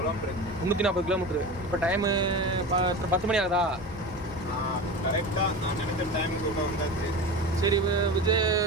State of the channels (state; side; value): normal; both; correlation 0.29